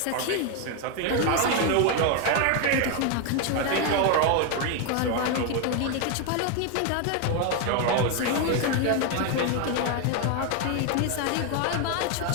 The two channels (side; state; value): both; different; correlation 0.01